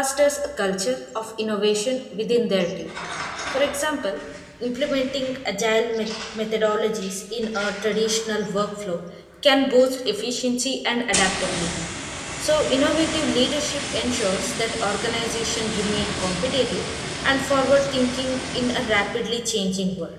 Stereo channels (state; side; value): identical; both; correlation 1.00